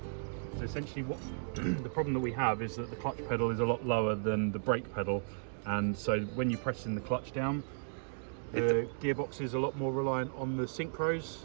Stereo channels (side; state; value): left; silent; digital silence